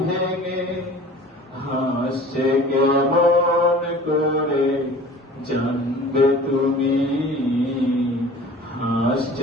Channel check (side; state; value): both; normal; correlation 0.44